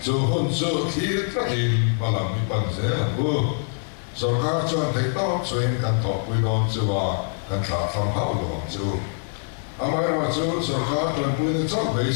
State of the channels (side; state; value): right; silent; digital silence